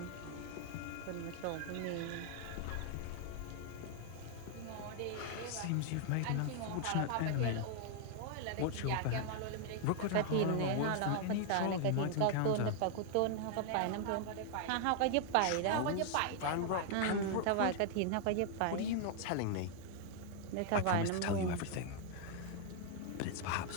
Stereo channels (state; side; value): different; both; correlation 0.00